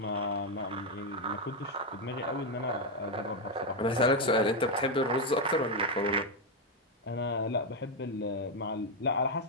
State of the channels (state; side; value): normal; both; correlation 0.04